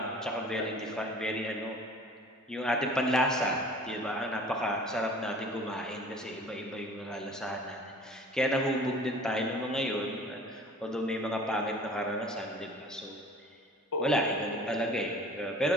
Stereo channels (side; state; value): both; normal; correlation 0.46